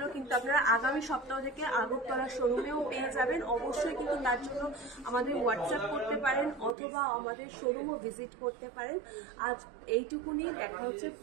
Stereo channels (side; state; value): left; drops out; at 6.8 s